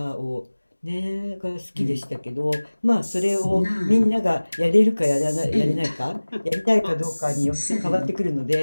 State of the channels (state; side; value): inverted; both; correlation -1.00